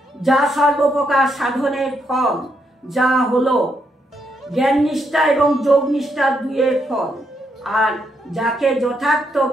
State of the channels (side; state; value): both; normal; correlation 0.78